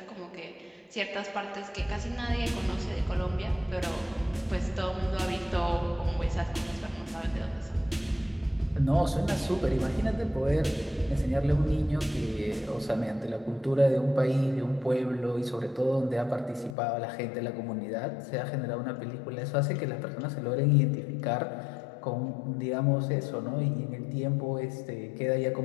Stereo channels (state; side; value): drops out; right; at 16.8 s